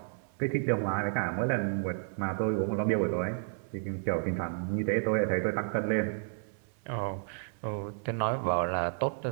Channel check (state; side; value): silent; left; 57 dB below the other